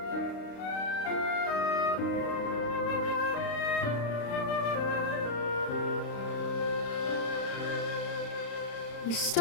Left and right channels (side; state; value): right; late; 35 ms